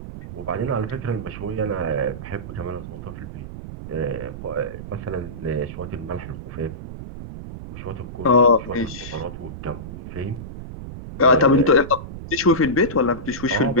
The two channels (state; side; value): noise; right; rumble, 10 dB below the sound